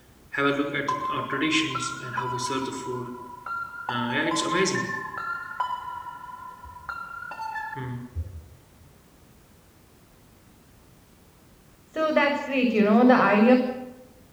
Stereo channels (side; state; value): both; identical; correlation 1.00